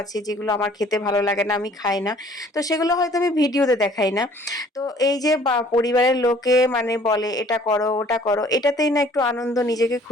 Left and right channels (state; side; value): normal; both; correlation 0.55